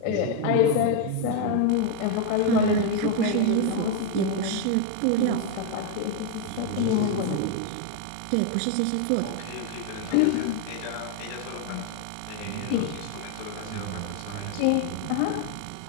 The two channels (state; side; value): different; both; correlation 0.01